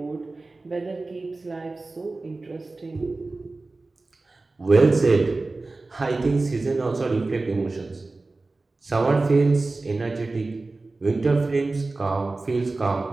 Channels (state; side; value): quieter; left; 3.4 dB